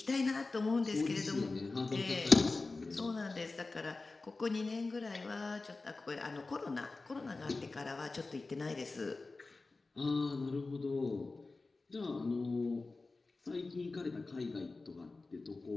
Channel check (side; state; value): right; quieter; 3.6 dB